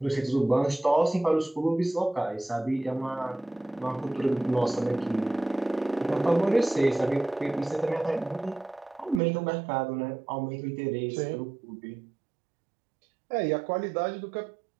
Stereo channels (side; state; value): left; drops out; at 9.2 s